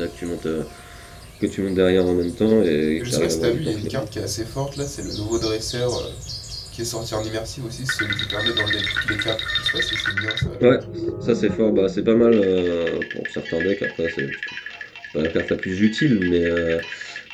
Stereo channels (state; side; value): identical; both; correlation 1.00